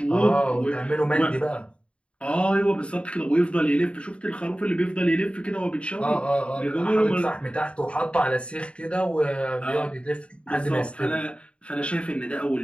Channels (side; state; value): right; late; 0.058 ms